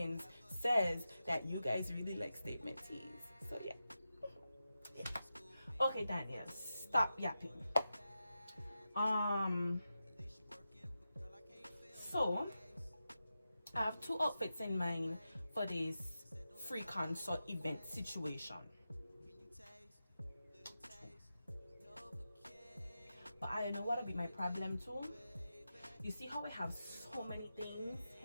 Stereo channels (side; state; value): both; inverted; correlation -0.91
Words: says that you guys really like statement tees. So yeah. Okay, Daniel, stop yapping. So I have 2 outfits in mind for this free concert event situation. But I know what'll be my problem too. You see how I have so many things